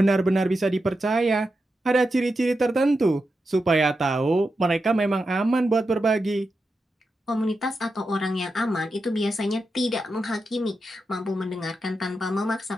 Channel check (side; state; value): both; normal; correlation 0.88